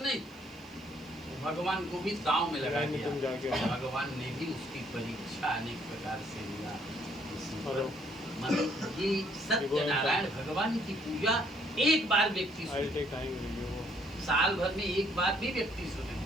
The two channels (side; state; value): right; noise; hiss, 30 dB below the sound